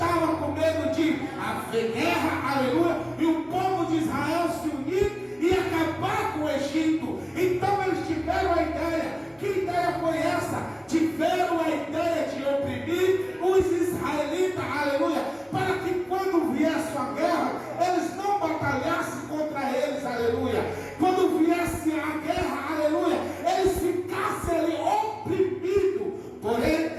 com medo de haver guerra, aleluia, e o povo de Israel se unir e acabar com o Egito. Então eles tiveram a ideia. Que ideia foi essa? Tiveram a ideia de oprimir os israelitas, aleluia, para que quando viesse a guerra, eles não batalhassem contra eles, aleluia. Quando viesse a guerra, aleluia, eles ficassem ali oprimidos.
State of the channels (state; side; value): identical; both; correlation 1.00